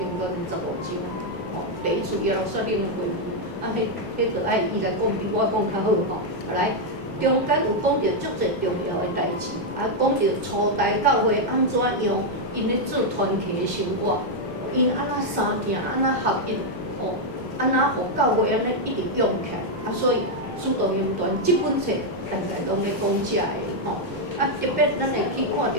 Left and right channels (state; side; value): normal; both; correlation 0.00